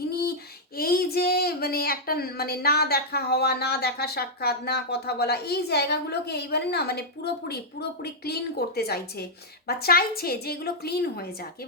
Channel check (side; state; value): both; normal; correlation -0.06